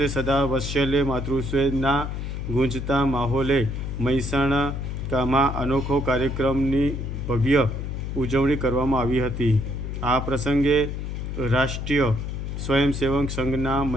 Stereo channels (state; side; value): noise; left; hum, 5 dB below the sound